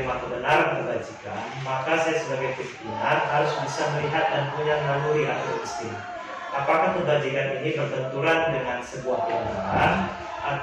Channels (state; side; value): identical; both; correlation 1.00